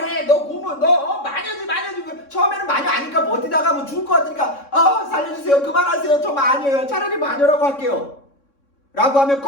너 고문, 너 마녀지. 처음에는 마녀 아니까 버티다가 뭐 죽을 것 같으니까 살려주세요, 그만하세요, 저 마녀예요, 차라리 마녀라고 할게요 라고 하면,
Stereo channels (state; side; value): late; right; 3.6 ms